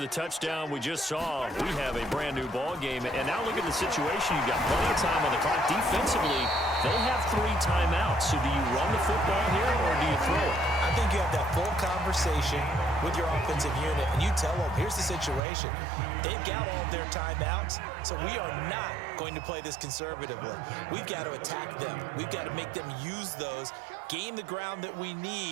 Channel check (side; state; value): left; drops out; at 15.4 s